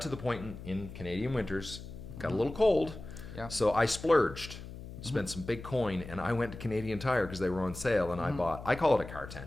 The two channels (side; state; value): left; noise; hum, 12 dB below the sound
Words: to the point in Canadian winters, got a little cold. Yeah. So I splurged, spent some big coin, and I went to Canadian Tire because they were on sale, and I call it a car